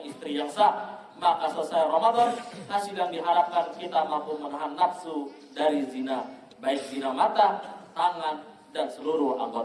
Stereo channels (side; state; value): both; identical; correlation 1.00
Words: istri yang sah. Maka selesai Ramadan, hasil yang diharapkan kita mampu menahan nafsu dari zina, baik zina mata, tangan, dan seluruh